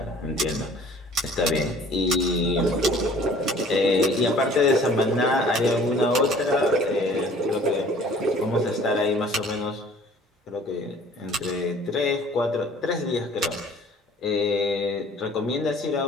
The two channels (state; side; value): normal; both; correlation 0.51